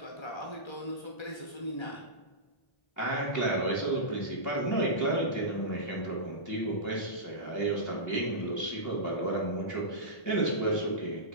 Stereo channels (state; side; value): late; right; 1.3 ms